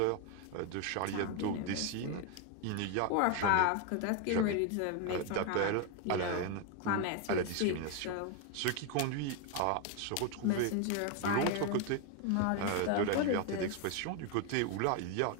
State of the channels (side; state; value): both; different; correlation 0.01